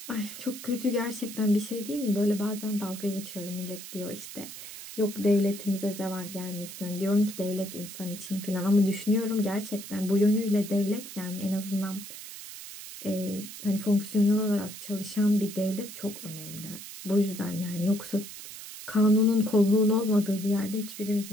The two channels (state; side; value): noise; right; hiss, 12 dB below the sound